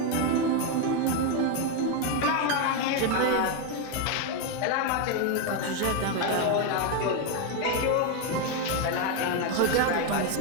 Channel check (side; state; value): both; different; correlation 0.02